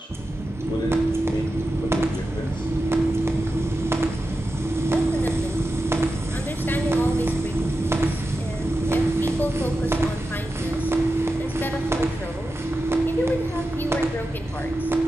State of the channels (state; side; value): normal; both; correlation 0.91